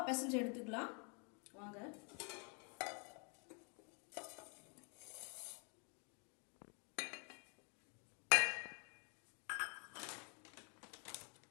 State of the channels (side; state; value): right; quieter; 36.6 dB